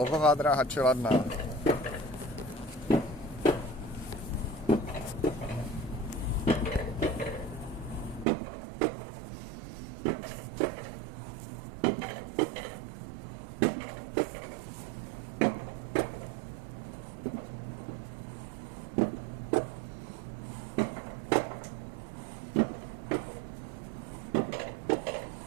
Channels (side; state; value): left; drops out; at 8.2 s